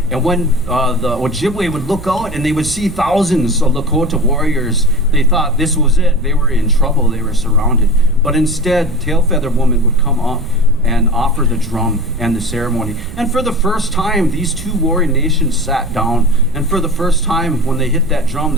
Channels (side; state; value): right; noise; rumble, 12 dB below the sound